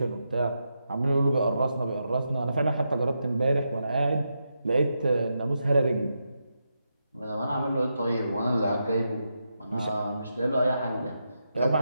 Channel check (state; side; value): inverted; both; correlation -0.85